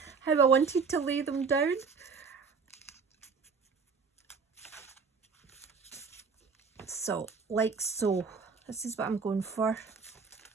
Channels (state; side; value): quieter; left; 5.2 dB